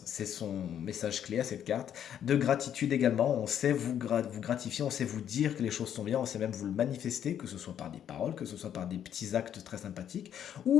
c'est son message clé à cette carte, de gratitude également, on sait vous gratifier, on sait vous dire que les choses sont bien, on sait même vous le manifester, que ce soit par des paroles, que ce soit par des petits actes très sympathiques,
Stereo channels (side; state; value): right; quieter; 9.6 dB